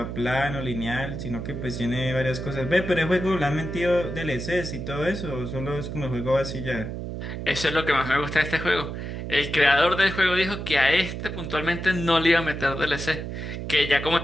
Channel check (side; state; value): right; noise; hum, 6 dB below the sound